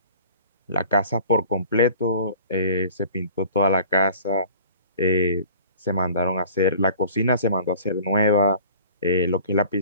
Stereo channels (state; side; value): inverted; both; correlation -0.46